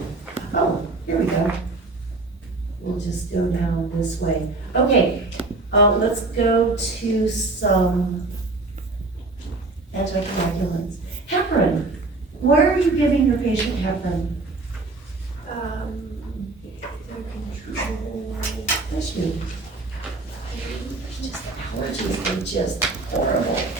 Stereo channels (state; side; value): quieter; left; 3.3 dB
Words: Oh, here we go. We'll just go down this way. Okay, let's go to some anticoagulants. Heparin. Why are you giving your patient heparin? Bless you. Allergies are just horrible.